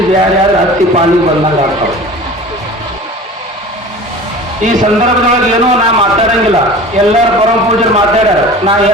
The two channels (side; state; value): both; normal; correlation 0.39